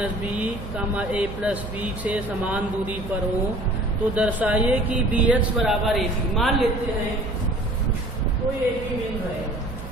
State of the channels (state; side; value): noise; right; hum, 11 dB below the sound